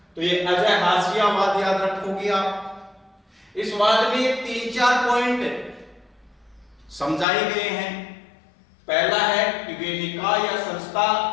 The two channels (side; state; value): right; drops out; at 7.2 s